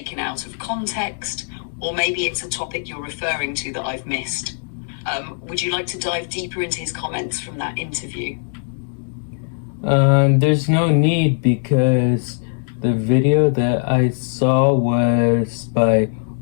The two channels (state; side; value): silent; right; digital silence